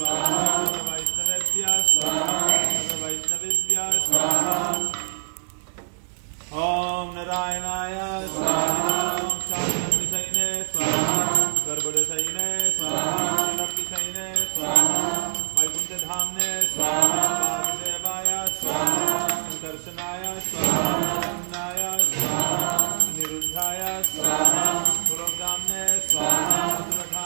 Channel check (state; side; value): silent; left; digital silence